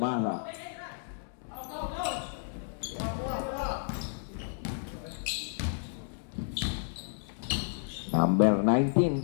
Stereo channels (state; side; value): silent; right; digital silence